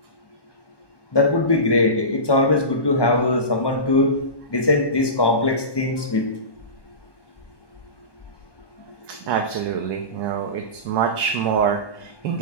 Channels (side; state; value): right; late; 1.2 ms